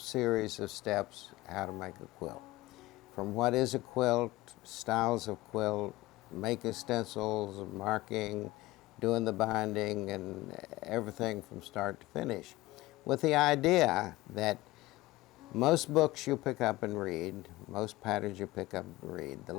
of steps how to make a quilt. From what is a quilt, styles of quilt, making stencils, marking, doing the binding, and everything from start to finish, with the idea that most books you pick up and read, most patterns you pick up and read, the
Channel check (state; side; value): quieter; right; 18.9 dB